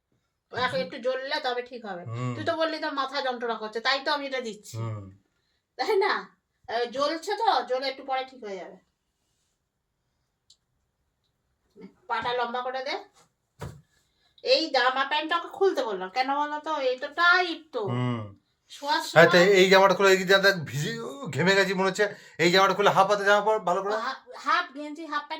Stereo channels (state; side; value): identical; both; correlation 1.00